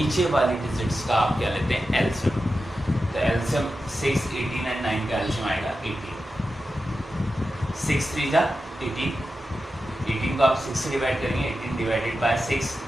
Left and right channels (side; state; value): both; normal; correlation 0.91